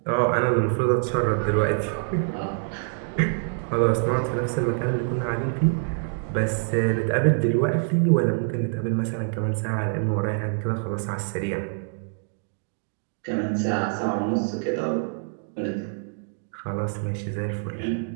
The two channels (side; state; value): left; silent; digital silence